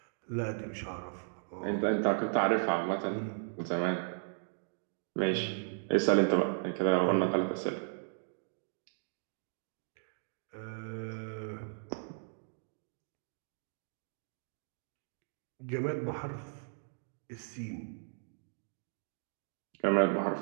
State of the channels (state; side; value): silent; left; digital silence